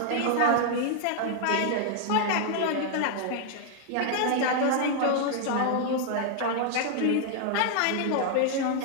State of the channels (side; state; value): both; different; correlation 0.00